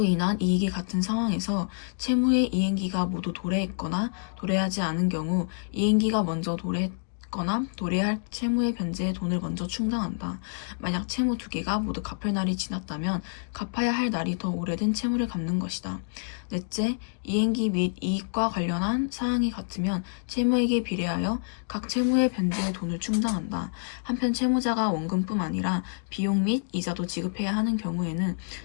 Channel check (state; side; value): silent; right; digital silence